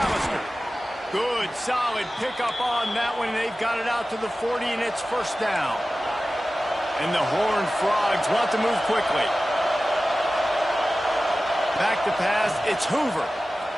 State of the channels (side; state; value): both; normal; correlation 0.96